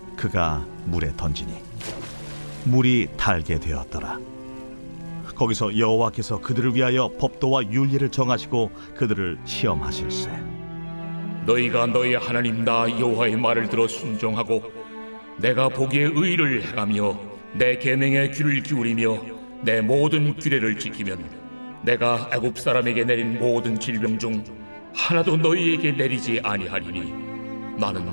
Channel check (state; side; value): inverted; both; correlation -1.00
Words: 그가 물에 던지니 물이 달게 되었더라. 거기서 여호와께서 그들을 위하여 법도와 윤리를 정하시고 그들을 시험하실세. 너희가 너희 하나님 나 여호와의 말을 들어 순종하고 내가 보기에 의를 행하며 내 계명에 귀를 기울이며 내 모든 규례를 지키면 내가 애굽 사람에게 내린 모든 질병 중 하나도 너희에게 내리지 아니하리니